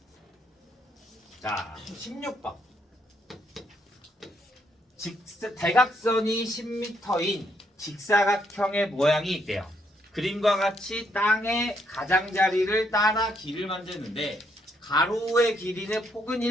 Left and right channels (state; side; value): normal; both; correlation 0.74